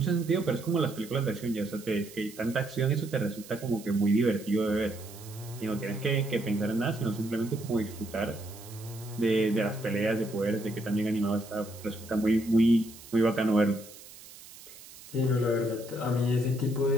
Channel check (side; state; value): right; noise; hiss, 18 dB below the sound